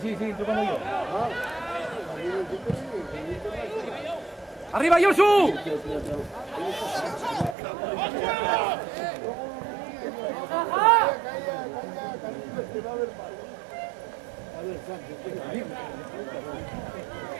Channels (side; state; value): left; drops out; at 7.6 s